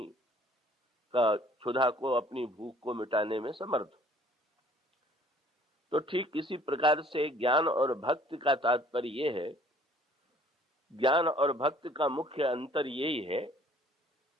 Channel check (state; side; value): normal; both; correlation 0.56